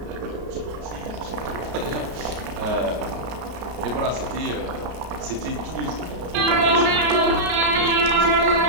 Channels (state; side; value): late; left; 33 ms